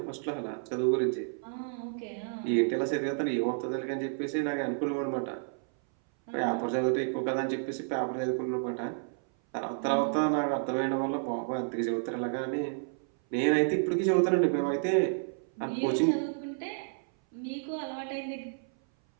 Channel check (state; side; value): silent; left; 57 dB below the other